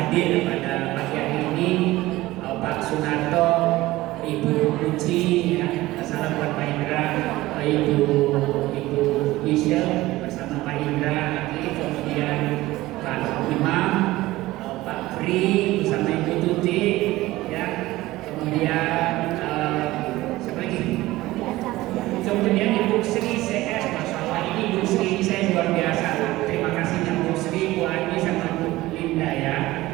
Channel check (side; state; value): left; quieter; 17.9 dB